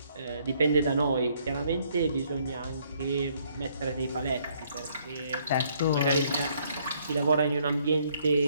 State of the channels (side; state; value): both; inverted; correlation -0.67